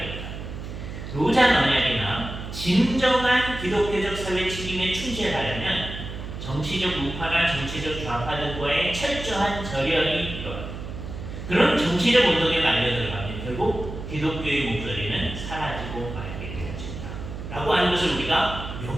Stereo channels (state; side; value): noise; right; hum, 9 dB below the sound